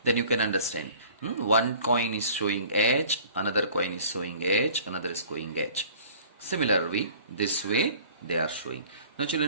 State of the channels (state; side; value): inverted; both; correlation -0.48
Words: then you can understand. 1 coin is showing H, another coin is showing H, another is showing H. Similarly, this way they are showing. Now